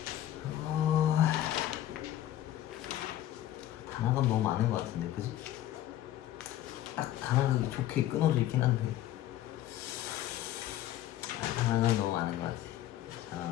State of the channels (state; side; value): quieter; right; 13.0 dB